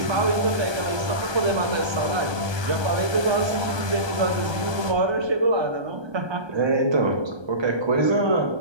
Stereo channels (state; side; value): late; left; 1.3 ms